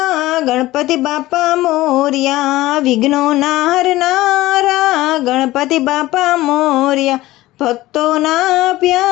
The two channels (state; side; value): quieter; right; 17.4 dB